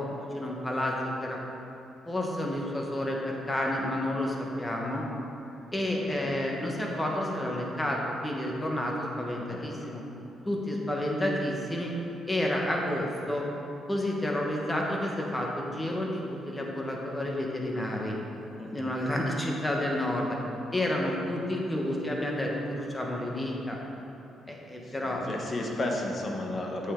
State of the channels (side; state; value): both; normal; correlation 0.82